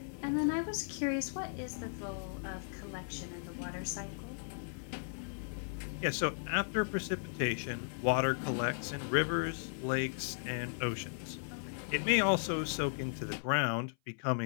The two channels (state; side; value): silent; right; 54 dB below the other